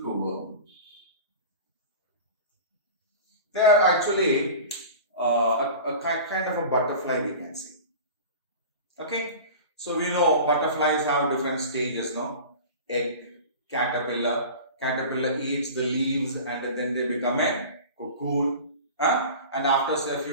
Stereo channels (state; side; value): inverted; both; correlation -0.36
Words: They are actually a kind of a butterfly, we can say. Okay, so we know butterflies have different stages, no? Egg, caterpillar. Caterpillar eats the leaves and then they become a cocoon. And after say a